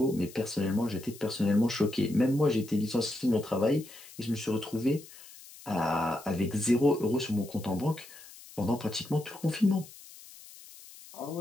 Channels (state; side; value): noise; left; hiss, 19 dB below the sound